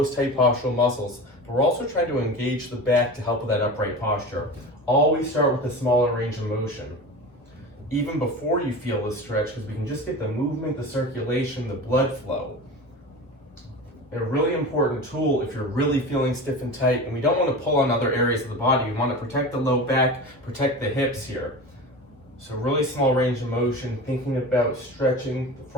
tight postural muscles. But we're also trying to engage the back to help with that upright posture. Always start with a smaller range of motion. Even before you feel the stretch, because we can just get the movement, the circulation, the blood flow. A really important tool if you're really feeling stiff and tight, and we don't want to pull on other areas of the body. We want to protect the low back, protect the hips here. So really small range of motion, thinking about stretching the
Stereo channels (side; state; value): both; normal; correlation 0.31